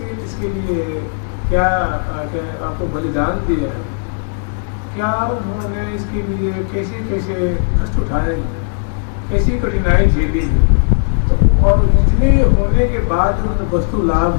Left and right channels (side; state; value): right; silent; digital silence